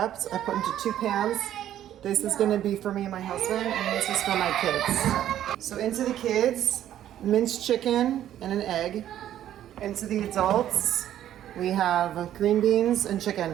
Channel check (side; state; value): left; quieter; 11.6 dB